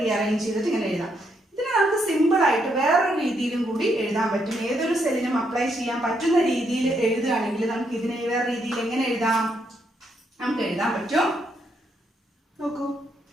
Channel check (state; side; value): normal; both; correlation 0.76